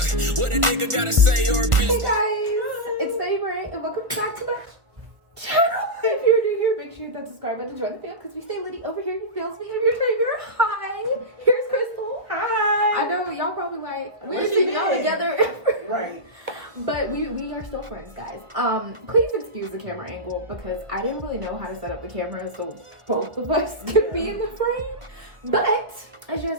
what a nigga gotta say or a bitch. Hey guys, it's Naimah and welcome back to the channel. If you're new here, make sure you hit that subscribe button to join the fam because we stay litty over here. He feels me. I'm your Naimah. Hi. Here's Krystal. Hi. I know y'all probably like, where's she all together? Right. But we are still friends, guys. Please excuse the camera angle because I didn't really know how to set up the camera so both of us could be in the frame. But as you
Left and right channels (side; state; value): left; late; 1.4 ms